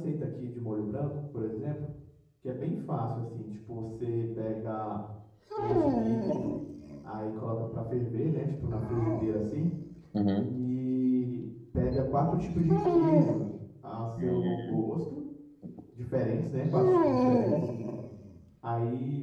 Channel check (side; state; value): both; identical; correlation 1.00